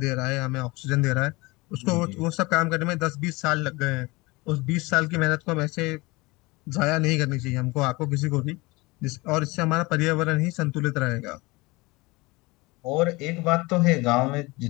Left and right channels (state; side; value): quieter; right; 23.5 dB